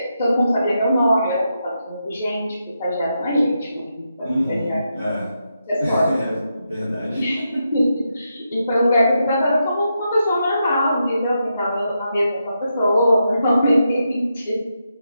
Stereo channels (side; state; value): both; inverted; correlation -0.84